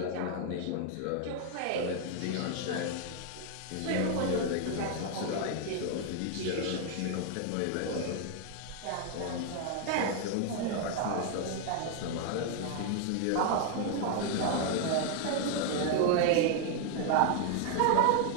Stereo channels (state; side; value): different; both; correlation 0.00